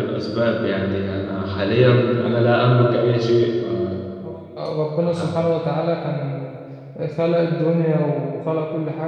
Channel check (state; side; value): identical; both; correlation 1.00